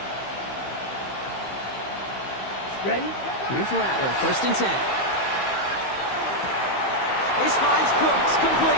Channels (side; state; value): right; late; 15 ms